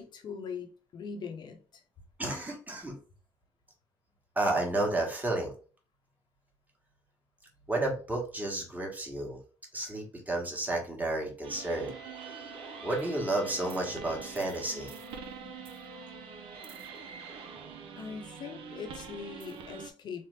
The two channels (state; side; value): normal; both; correlation 0.60